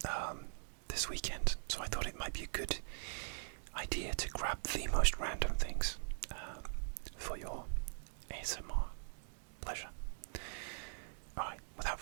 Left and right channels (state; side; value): silent; left; digital silence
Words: this weekend, so I thought it might be a good idea to grab the most random things for your ASMR pleasure. Alright, without